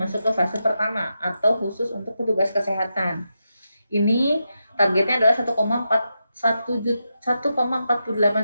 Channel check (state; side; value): inverted; both; correlation -0.87